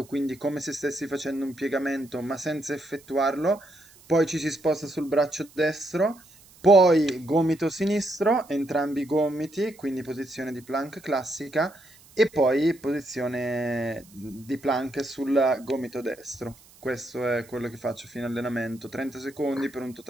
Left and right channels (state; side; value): noise; right; hiss, 25 dB below the sound